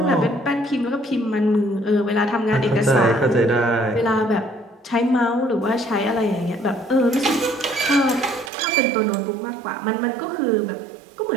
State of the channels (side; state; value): left; drops out; at 8.5 s